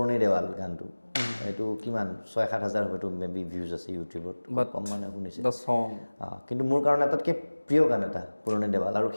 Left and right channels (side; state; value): both; inverted; correlation -1.00